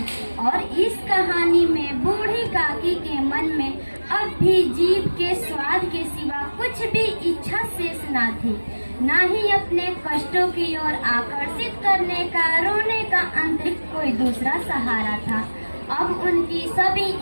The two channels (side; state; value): both; inverted; correlation -1.00